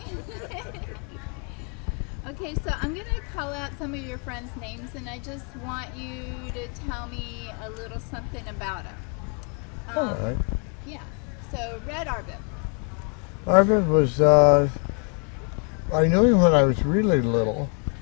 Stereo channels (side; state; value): right; quieter; 38.9 dB